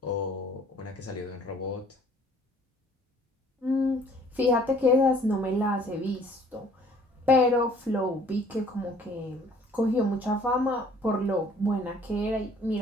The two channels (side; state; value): both; normal; correlation 0.56